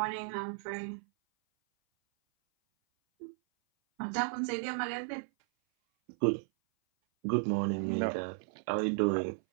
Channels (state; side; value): silent; left; 55 dB below the other